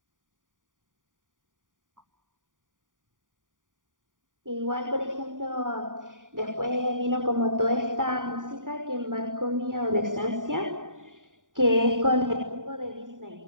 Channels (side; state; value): left; late; 0.88 ms